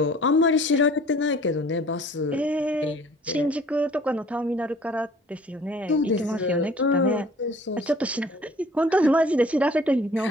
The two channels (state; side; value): normal; both; correlation 0.51